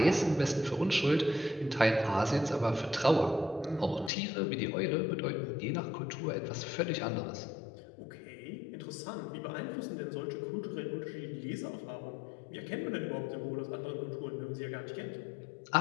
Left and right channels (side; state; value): right; drops out; at 4.1 s